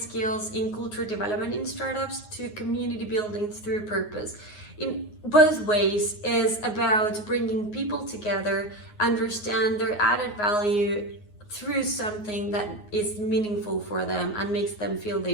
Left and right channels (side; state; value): right; late; 9.5 ms